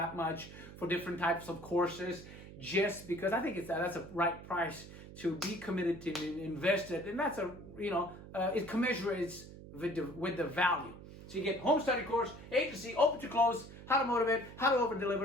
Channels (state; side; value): noise; right; hum, 15 dB below the sound